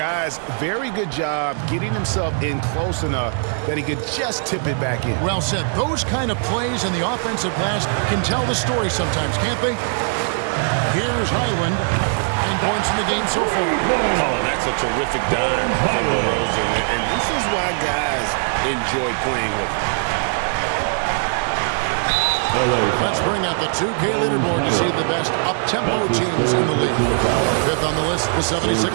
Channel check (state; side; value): silent; left; 62 dB below the other